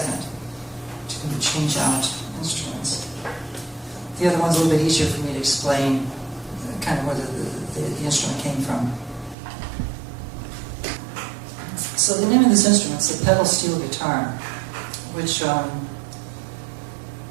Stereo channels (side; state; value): left; drops out; at 9.3 s